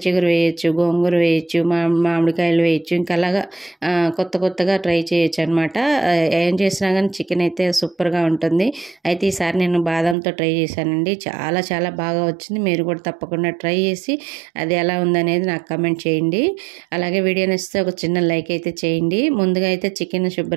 చిగురు వేయచ్చు, గోంగూర వేయచ్చు, మామిడికాయలు వేయచ్చు, ఇంకా అలాగా కొత్తగా ట్రై చేయొచ్చు అనమాట. ఏం చేసినా కానీ చికెన్ అయితే సూపర్గా ఉంటుంది. అయితే ఈసారి నేను బాదంతో ట్రై చేశానండి. చాలా బాగా వచ్చింది. మీరు కూడా తప్పకుండా ట్రై చేసి అది ఎలా ఉందనేది నాకు కమెంట్ చేయండి. అలాగే వీడియో నచ్చితే ఒక చిన్న లైక్ అయితే చేయండి. ముందుగా అయితే చికెన్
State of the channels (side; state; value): left; drops out; at 10.2 s